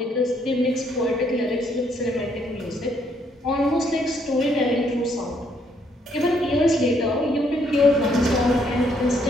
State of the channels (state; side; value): normal; both; correlation 0.70